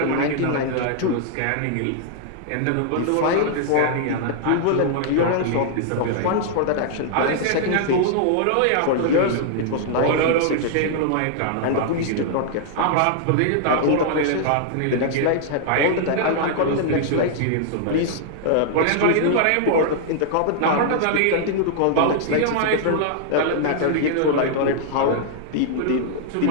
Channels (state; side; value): different; both; correlation -0.01